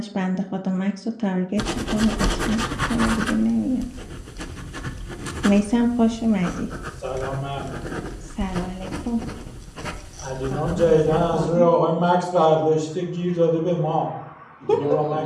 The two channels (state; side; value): identical; both; correlation 1.00